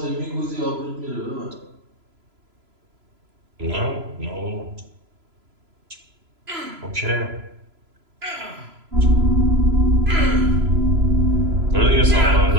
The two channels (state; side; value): late; left; 3.0 ms